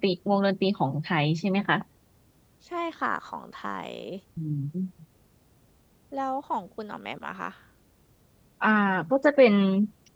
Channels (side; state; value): both; identical; correlation 1.00